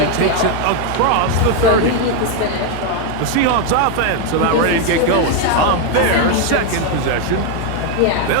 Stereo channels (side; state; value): both; different; correlation 0.01